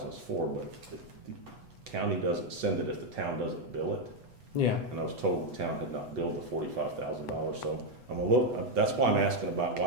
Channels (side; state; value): left; late; 8.1 ms